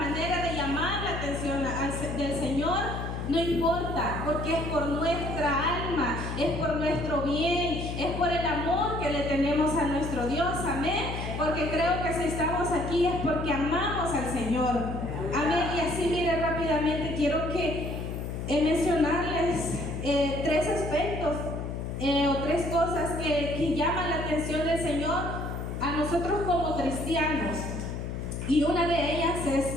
de llamar la atención del Señor, No importa, porque es por nuestra alma, es por nuestro bien, es por el amor que le tenemos a nuestro Dios, amén. Porque creo que si estamos aquí es porque amamos al Señor, amén. Y así, mire, rápidamente quiero mencionarles tres aspectos o tres cosas que llaman la atención del Señor a nosotros como cristianos. Y una de ellas es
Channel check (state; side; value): noise; left; hum, 5 dB below the sound